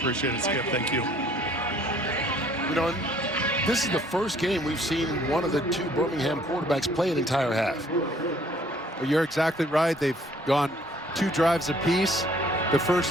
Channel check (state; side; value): normal; both; correlation 0.59